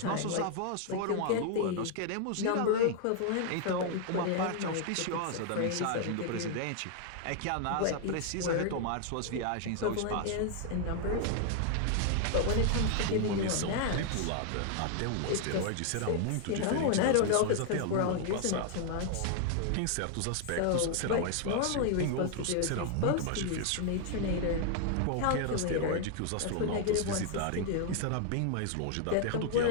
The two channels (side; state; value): both; different; correlation 0.00